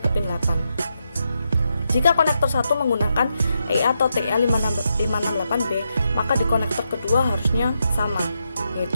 ke pin 8. Jika konektor 1 menggunakan IA atau TA568B, maka di konektor kedua harusnya sama,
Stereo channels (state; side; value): inverted; both; correlation -0.83